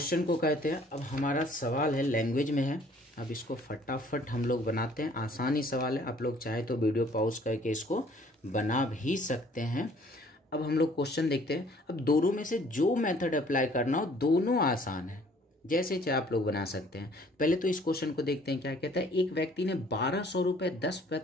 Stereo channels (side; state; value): both; normal; correlation 0.57